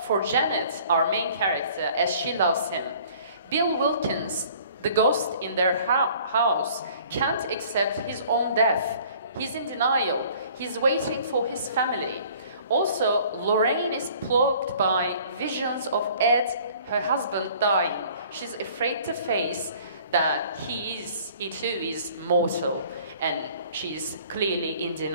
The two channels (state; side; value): inverted; both; correlation -0.53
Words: for Janet, our main character, as she loves him. Bill Wilkins, the ghost in their house, can't accept his own death. He's in denial. He's waiting for his family. Also, Lorraine is plagued by visions of Ed, her husband, dying. She's afraid to face that he too is mortal, and she's clearly in